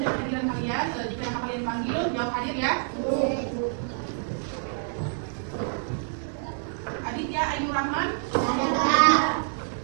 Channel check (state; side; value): silent; left; digital silence